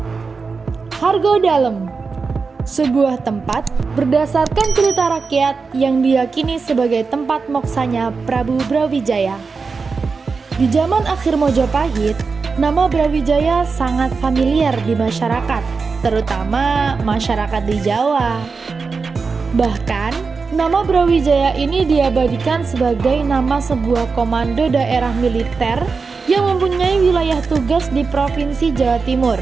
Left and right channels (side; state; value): left; quieter; 4.7 dB